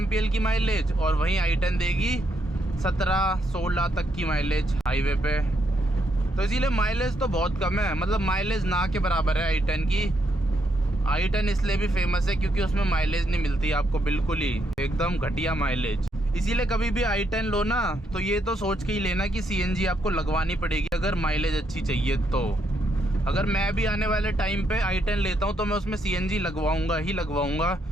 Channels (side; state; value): both; normal; correlation 0.77